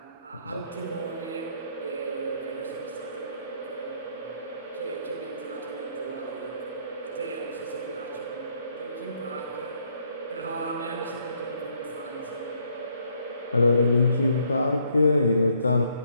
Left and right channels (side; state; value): both; inverted; correlation -0.69